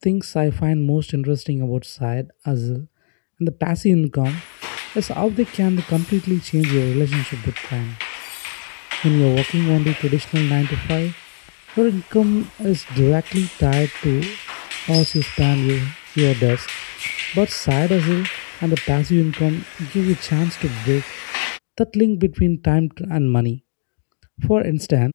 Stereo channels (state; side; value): silent; right; digital silence